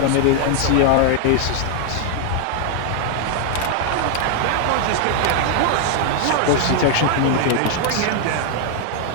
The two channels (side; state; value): both; different; correlation 0.00